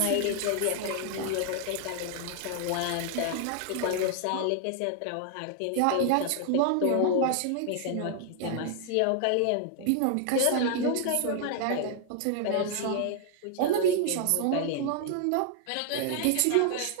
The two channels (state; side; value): different; both; correlation 0.00